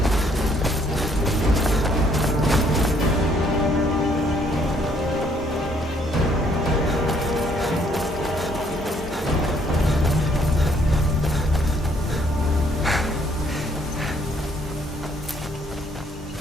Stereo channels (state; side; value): normal; both; correlation 0.66